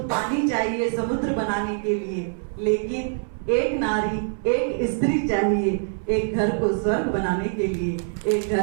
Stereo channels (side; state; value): left; silent; 61 dB below the other